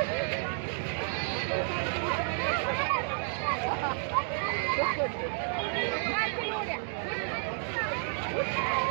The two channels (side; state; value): left; silent; 57 dB below the other